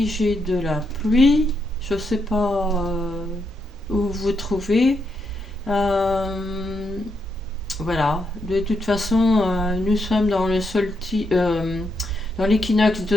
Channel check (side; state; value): both; normal; correlation 0.80